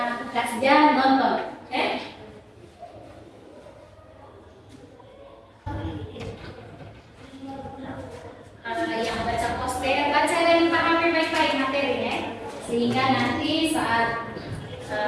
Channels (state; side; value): identical; both; correlation 1.00